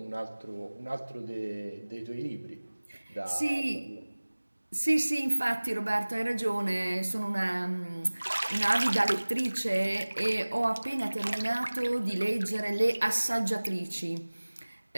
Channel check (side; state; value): both; inverted; correlation -1.00